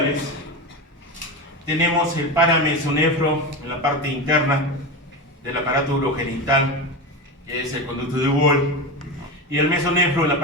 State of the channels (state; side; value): normal; both; correlation 0.20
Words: Tenemos el paramesonefro en la parte interna del aparato urogenital, que es el conducto de Wall, y el mesonefro en la